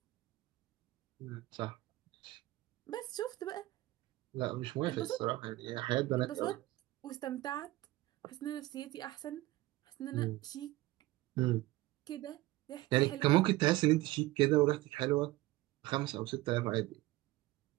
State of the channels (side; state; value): left; quieter; 18.4 dB